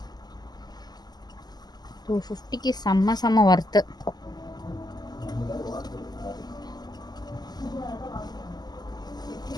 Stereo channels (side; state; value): right; late; 0.20 ms